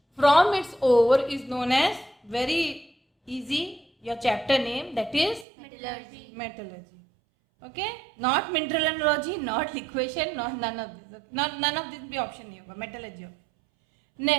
from its ore is known as, very easy, your chapter name, that is metallurgy. Okay, not mineralogy, not liquation, not none of this. None of this भी option नहीं होगा, metallurgy.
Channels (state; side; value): drops out; left; at 5.5 s